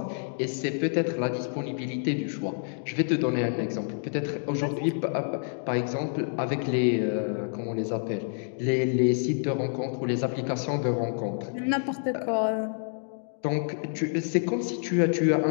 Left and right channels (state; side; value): silent; right; 59 dB below the other